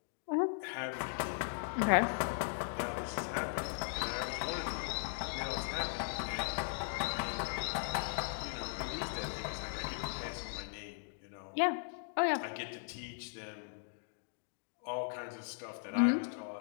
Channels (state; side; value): silent; right; digital silence